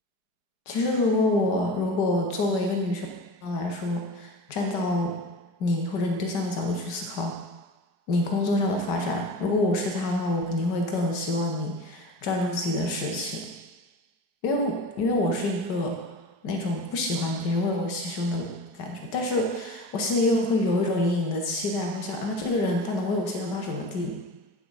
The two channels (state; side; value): late; right; 4.7 ms